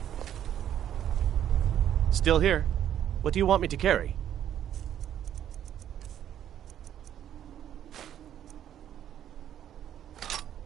Still here. What do you want me to carry?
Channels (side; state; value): left; quieter; 10.5 dB